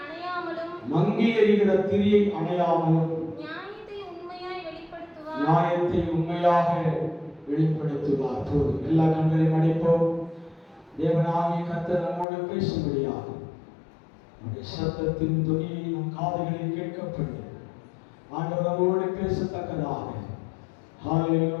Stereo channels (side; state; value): right; drops out; at 12.2 s